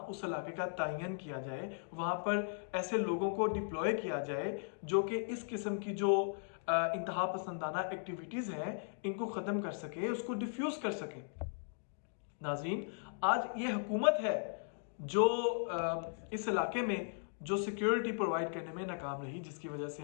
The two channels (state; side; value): silent; right; digital silence